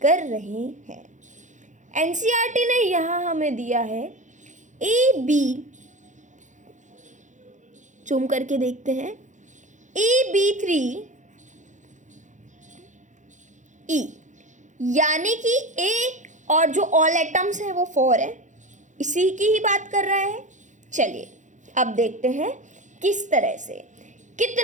कर रहे हैं। एनसीईआरटी ने यहाँ हमें दिया है AB, जूम करके देखते हैं, AB3E, यानी कि A और जो ऑल एटम्स हैं वो 4 है, इसी की ही बात कर रहा है। चलिए अब देखते हैं किस तरह से,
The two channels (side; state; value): left; late; 0.36 ms